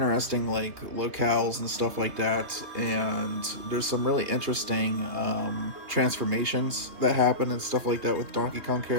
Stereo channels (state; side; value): late; left; 3.1 ms